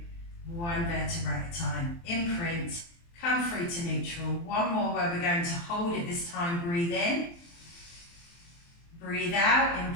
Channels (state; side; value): late; right; 23 ms